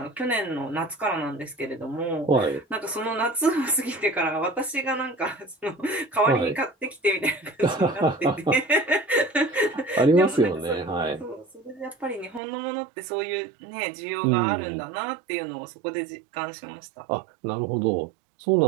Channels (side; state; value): left; drops out; at 12.4 s